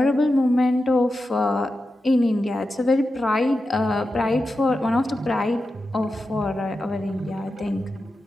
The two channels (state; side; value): normal; both; correlation 0.91